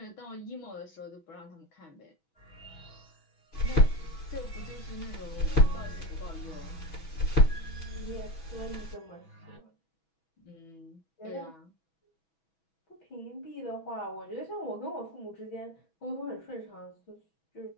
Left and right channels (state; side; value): late; right; 6.2 ms